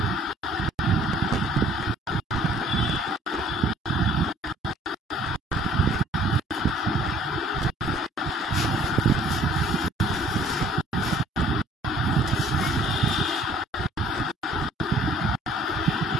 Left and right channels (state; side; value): normal; both; correlation 0.56